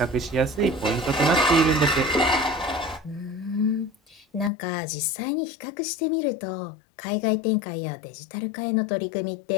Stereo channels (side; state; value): right; drops out; at 4.5 s